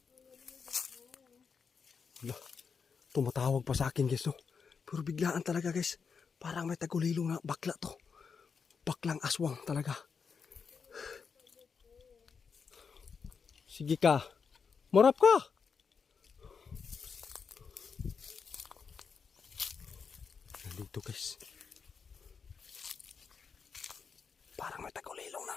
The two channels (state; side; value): quieter; right; 5.8 dB